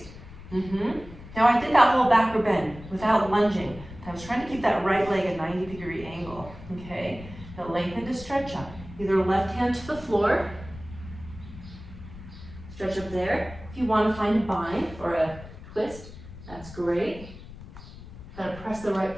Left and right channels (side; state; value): left; noise; rumble, 16 dB below the sound